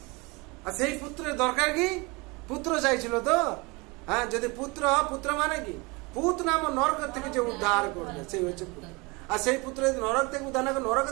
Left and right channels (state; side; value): quieter; left; 26.6 dB